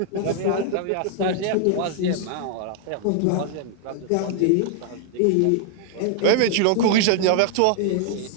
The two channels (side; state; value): both; different; correlation 0.00